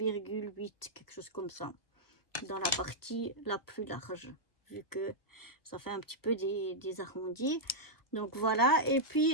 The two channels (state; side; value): late; right; 1.0 ms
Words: quelque chose comme ça, dans la partie la plus large, vu que ça fait un petit peu des arrondis. Donc voilà, et